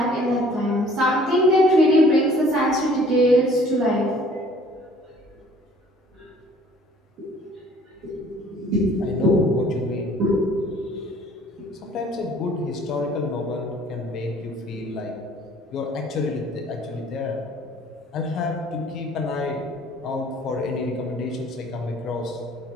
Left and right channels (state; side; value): normal; both; correlation 0.55